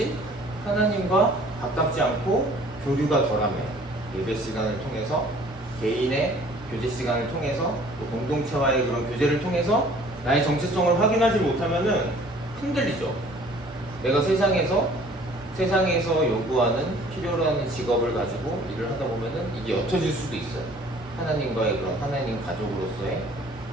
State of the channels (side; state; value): both; normal; correlation 0.53